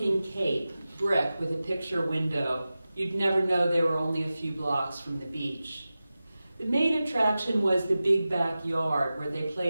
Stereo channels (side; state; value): both; inverted; correlation -0.95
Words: cape, brick with a picture window. You'd never know they were only a few blocks from the beach. The main attraction was the big backyard where they